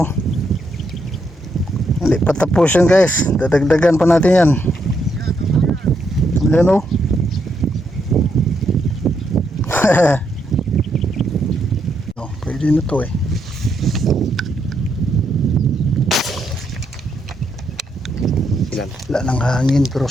Hindi pa tapos yan guys, dadagdagan pa natin yan. Ayan oh. No, pwede na to eh. Ilan? Wala nang hangin pero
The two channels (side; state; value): both; normal; correlation 0.78